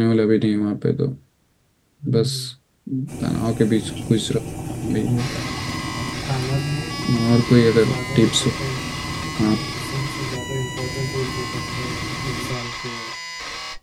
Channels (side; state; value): both; identical; correlation 1.00